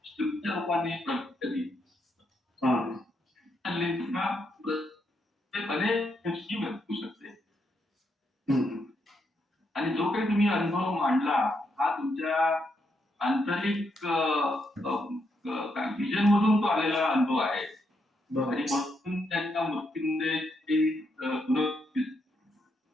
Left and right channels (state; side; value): normal; both; correlation 0.79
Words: तुमच्या रूपाने प्रगत करी अनेक गोष्टी भेटू शकते. आणि जो काही तुम्ही अनुभव मांडला हा तुमच्या आंतरिक व्हिजन मधून तो आलेला अनुभव आहे. आणि म्हणून त्यांच्या मृत्यूमध्ये